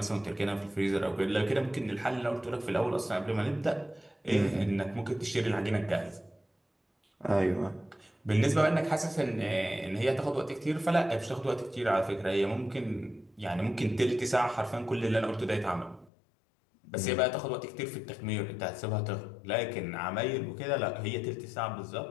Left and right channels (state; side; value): drops out; right; at 16.1 s